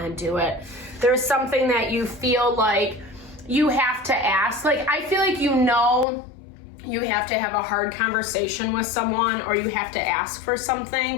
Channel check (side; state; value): right; drops out; at 6.1 s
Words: to do it. There's something that you feel like you have to ask. Like, I feel like you know you have to have a hard conversation with someone, or you have to ask for